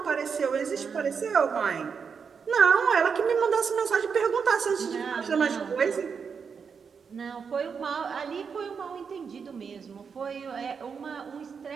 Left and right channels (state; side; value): quieter; left; 6.1 dB